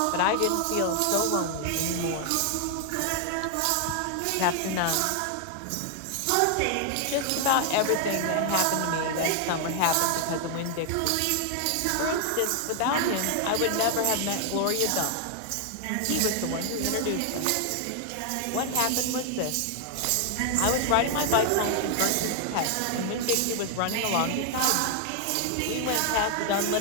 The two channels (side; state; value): both; different; correlation 0.00